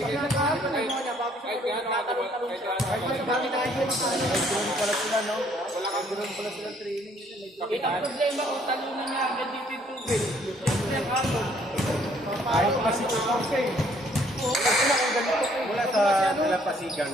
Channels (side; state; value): both; normal; correlation 0.63